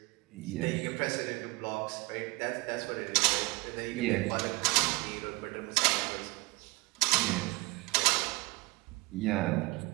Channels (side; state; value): left; quieter; 24.0 dB